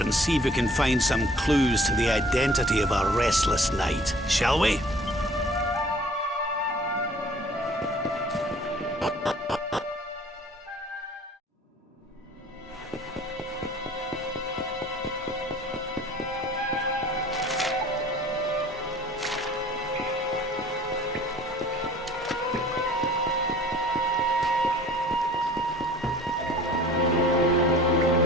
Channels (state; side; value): normal; both; correlation 0.50